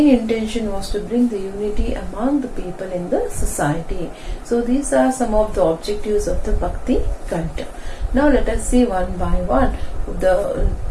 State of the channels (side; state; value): both; identical; correlation 1.00